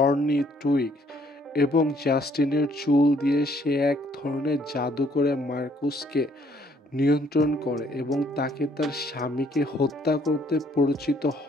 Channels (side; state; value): both; normal; correlation 0.64